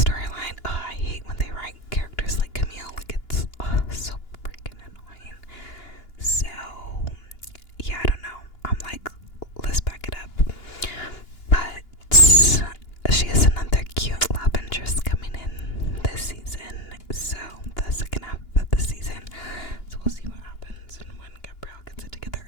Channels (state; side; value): late; right; 2.9 ms